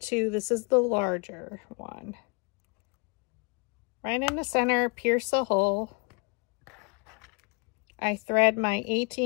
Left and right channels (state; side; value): quieter; right; 32.0 dB